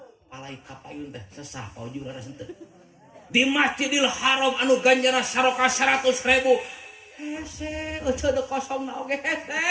palai kapayun teh sesah Pak Uju laras henteu di Masjidil Haram anu ganjana saroka 100.000 hese ojo de kosong na oge hese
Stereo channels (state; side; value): identical; both; correlation 1.00